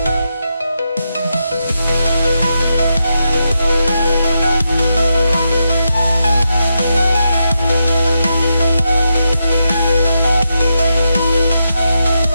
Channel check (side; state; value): both; inverted; correlation -0.85